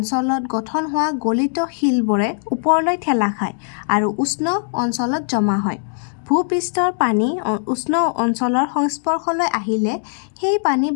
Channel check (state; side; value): silent; right; digital silence